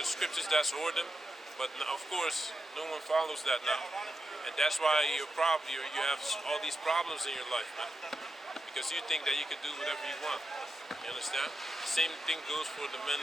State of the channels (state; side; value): normal; both; correlation 0.87